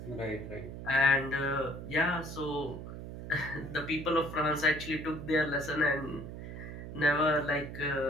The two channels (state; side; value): noise; right; hum, 9 dB below the sound